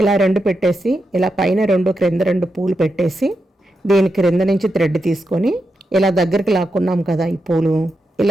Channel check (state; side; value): normal; both; correlation 0.86